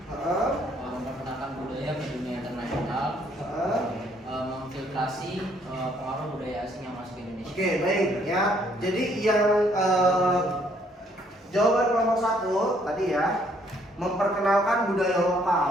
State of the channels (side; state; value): both; normal; correlation 0.66